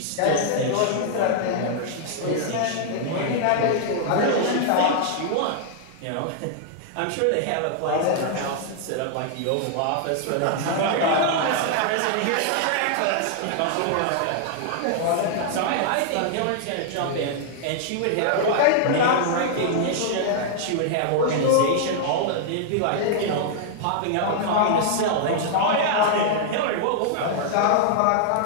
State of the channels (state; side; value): different; both; correlation -0.01